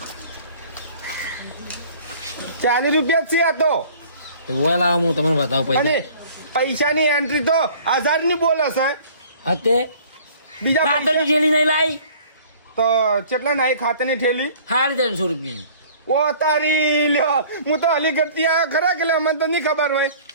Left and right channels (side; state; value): both; inverted; correlation -0.51